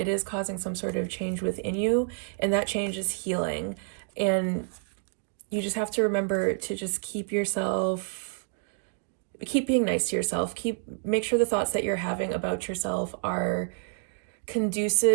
is causing some sort of change within you, and that change is healing. And you just have to remember to just keep being nice to yourself. Make sure the thoughts that you're having about yourself are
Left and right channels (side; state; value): left; silent; digital silence